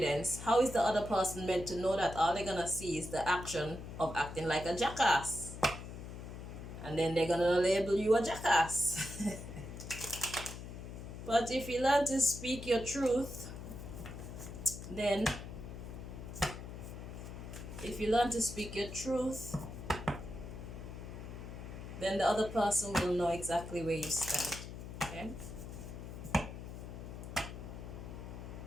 how is the other person meant to know that? All they're gonna see is the action of acting like a jackass, and then they're gonna label you a jackass. But if you learn to speak your truth, then then the other person will know exactly where you stand. Okay?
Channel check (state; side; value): noise; left; hum, 10 dB below the sound